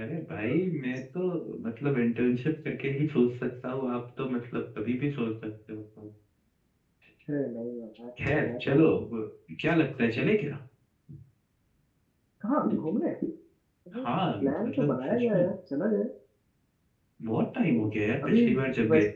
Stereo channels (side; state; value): both; identical; correlation 1.00